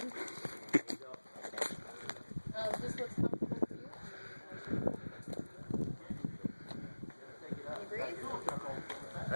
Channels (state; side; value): inverted; both; correlation -1.00